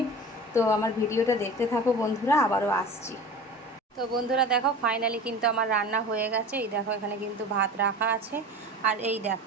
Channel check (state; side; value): normal; both; correlation 0.36